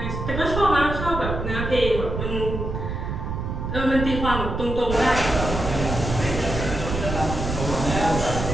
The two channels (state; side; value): noise; right; rumble, 4 dB below the sound